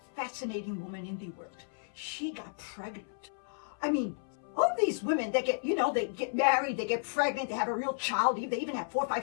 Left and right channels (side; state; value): right; silent; 56 dB below the other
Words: fascinating woman in the world. She got pregnant. I mean, all these women that they get married, they get pregnant, they have a real child, they even have 4,